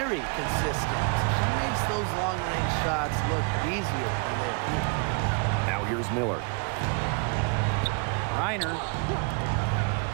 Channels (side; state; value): left; quieter; 34.5 dB